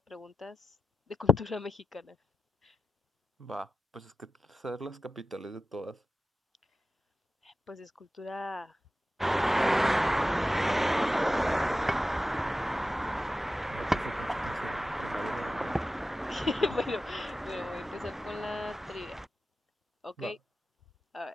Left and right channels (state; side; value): normal; both; correlation 0.92